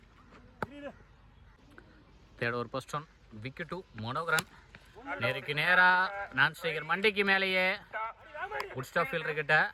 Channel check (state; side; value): identical; both; correlation 1.00